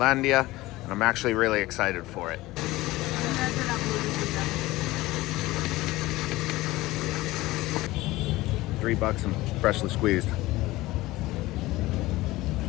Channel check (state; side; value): quieter; right; 18.6 dB